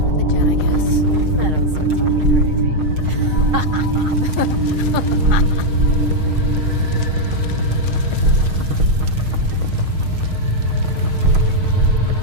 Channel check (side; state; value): left; late; 6.4 ms